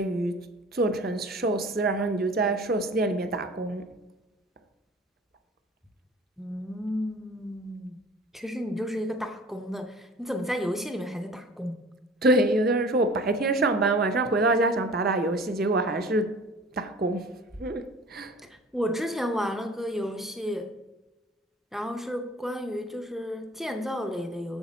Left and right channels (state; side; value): normal; both; correlation 0.45